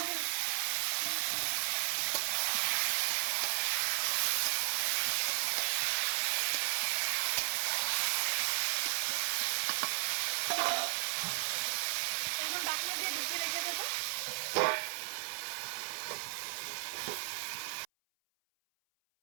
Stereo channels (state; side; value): silent; left; 54 dB below the other